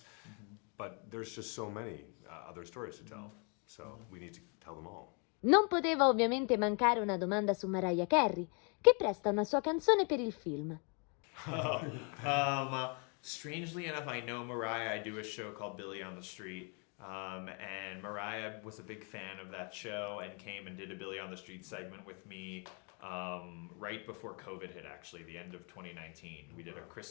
But there's just so many other stories to tell. So we need to tell them all. Non poteva ovviamente mancare una domanda su Mariah Carey, che presta una sua canzone per il film. Strangely enough, I know Mariah. I do a show called Billy on the Street, and Mariah was a big fan of that show and came and did a Billy on the Street segment with me right before COVID hit, actually, the end of 2019. We did a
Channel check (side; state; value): right; quieter; 36.4 dB